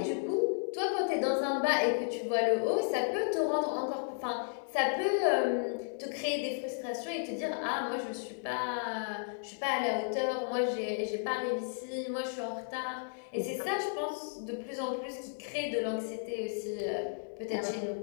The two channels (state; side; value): silent; right; digital silence